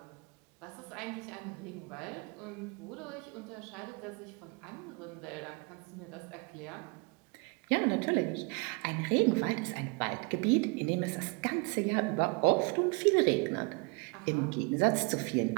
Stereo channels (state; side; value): quieter; left; 31.2 dB